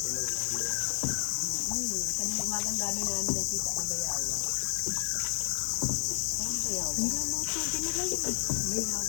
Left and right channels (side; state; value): right; silent; digital silence